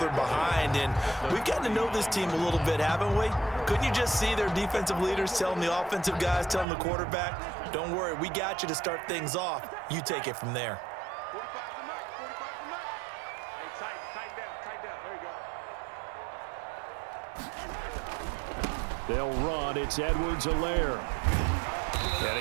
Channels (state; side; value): drops out; left; at 6.7 s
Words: behind. And we've gotten to know this team a little bit, haven't we? Couldn't you just see their defensive leaders telling the offensive guys, telling the quarterback, don't worry, we got you to start things off. You take it from there. They'll run. It's Edwards-Helaire. And